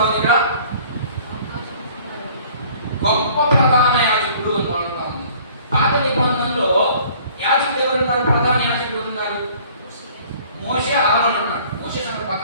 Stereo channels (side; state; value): both; inverted; correlation -0.53